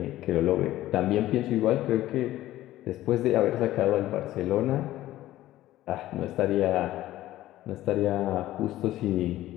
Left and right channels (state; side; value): quieter; right; 14.9 dB